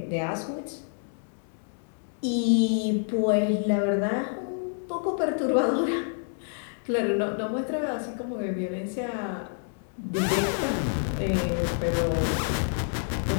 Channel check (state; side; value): silent; right; digital silence